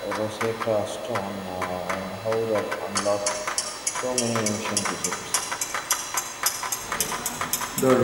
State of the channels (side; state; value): both; identical; correlation 1.00